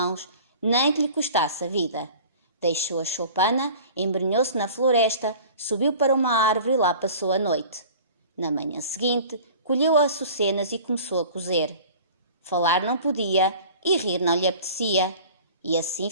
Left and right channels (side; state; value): both; inverted; correlation -0.43